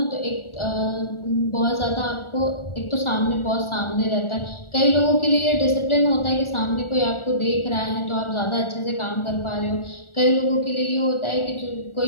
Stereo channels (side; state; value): right; late; 1.4 ms